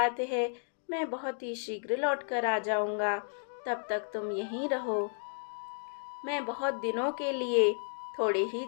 है, मैं बहुत ही शीघ्र लौट कर आ जाऊंगा, तब तक तुम यहीं रहो। मैं बहुत दिनों के लिए थोड़े ही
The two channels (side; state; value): right; silent; digital silence